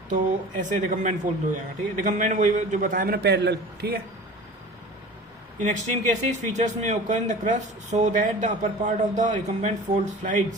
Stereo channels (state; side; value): normal; both; correlation 0.39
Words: तो ऐसे रिकम्बेंट फोल्ड हो जाएगा, ठीक है। रिकम्बेंट वही जो बताया मैंने, पैरेलल, ठीक है। इन एक्सट्रीम केसेस फीचर्स में occur in the crust so that the upper part of the recumbent fold